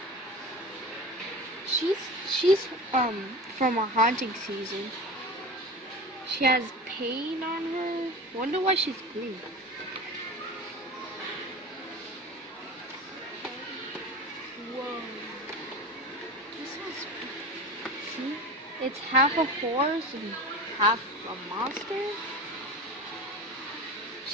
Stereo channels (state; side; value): normal; both; correlation 0.31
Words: She's from a haunting season. She has paint on her. Wonder why she's green. Whoa. This one's, see? It's half a horse and half a monster.